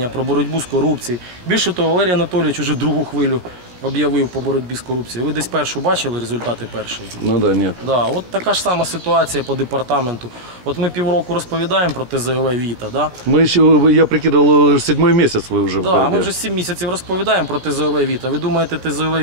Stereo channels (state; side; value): late; left; 16 ms